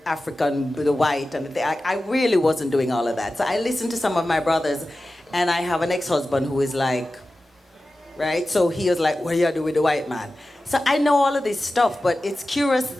African, with the white. And I really wasn't doing all of that. So I listened to some of my brothers. And I have an ex-husband who is like, right? So he was like, what do you do with the white man? So I know all of this stuff, but it's curious,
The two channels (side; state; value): both; normal; correlation 0.94